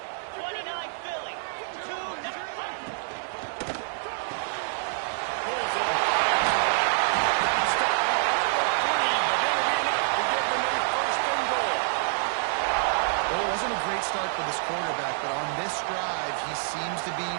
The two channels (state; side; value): silent; left; digital silence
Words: 29 Philly. 2-9. Pulls it. Stop. 3, but that'll be enough to give them a first and goal. Well, it wasn't a great start for this quarterback, but on this drive, he seems to be